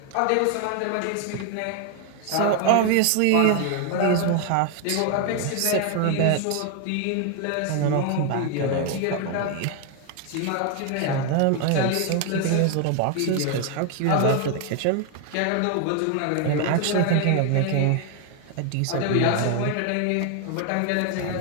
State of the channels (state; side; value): different; both; correlation 0.01